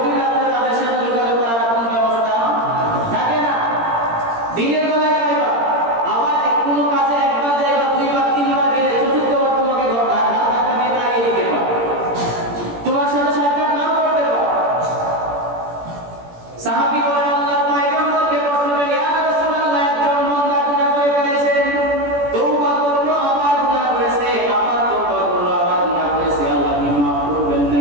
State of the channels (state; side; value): late; left; 17 ms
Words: রাতে তাদের সাথে যোগাযোগ করার কোনো ব্যবস্থা থাকে না। দিনের বেলায় যাইবা, আবার কোনো কাজে একবার যাইবা, দুইবার তিনবার গেলে চতুর্থবার তোমাকে ধাক্কা দিয়ে তাড়িয়ে দিতে পারে, তোমার সাথে সাক্ষাৎ নাও করতে পারে। সাহাবী বলেন আল্লাহর পয়গম্বরকে প্রশ্ন করেন, ইয়া রাসূলুল্লাহ, একজন বান্দা গুনাহ করে ফেলেছেন, তওবা করলো আবার গুনাহ করেছে, আবার তওবা করলো আবার গুনাহ করেছে, আল্লাহ কি মাফ করবেন